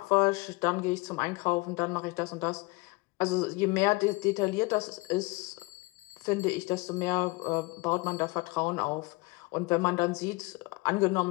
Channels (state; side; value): quieter; right; 25.2 dB